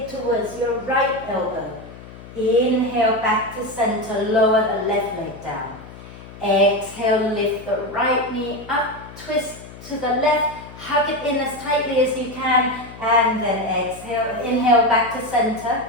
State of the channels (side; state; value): left; noise; hum, 17 dB below the sound